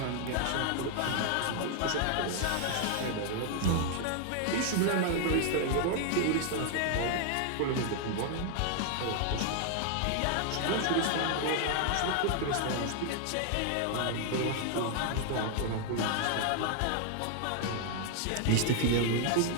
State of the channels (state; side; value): different; both; correlation 0.00